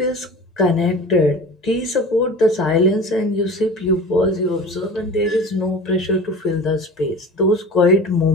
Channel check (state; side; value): normal; both; correlation 0.37